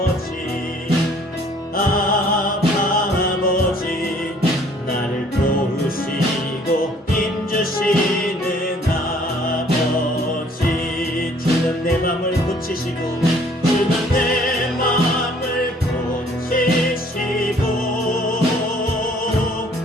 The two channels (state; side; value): normal; both; correlation 0.58